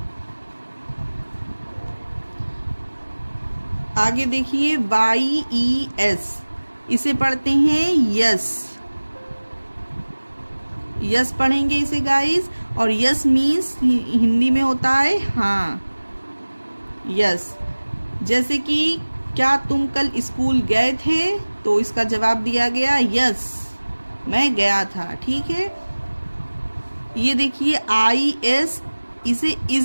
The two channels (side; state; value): both; inverted; correlation -1.00